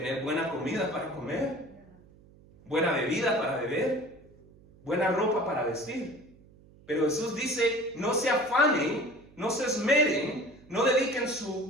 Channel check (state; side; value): noise; right; hum, 25 dB below the sound